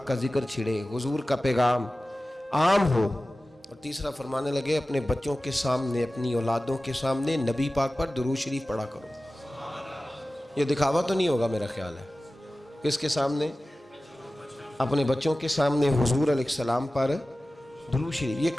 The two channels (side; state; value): both; normal; correlation 0.96